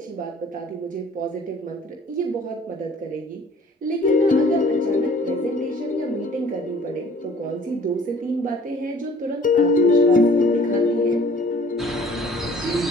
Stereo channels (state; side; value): normal; both; correlation 0.52